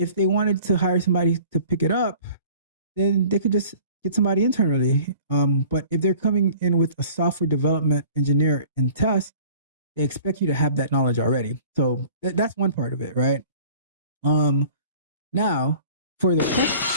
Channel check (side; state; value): both; inverted; correlation -0.48